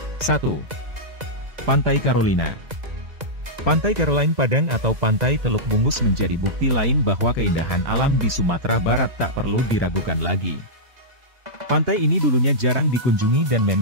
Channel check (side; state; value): left; late; 2.0 ms